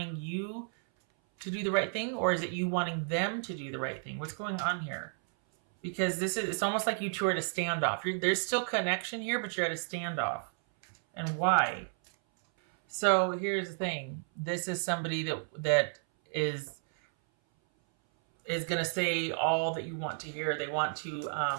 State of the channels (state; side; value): silent; left; 56 dB below the other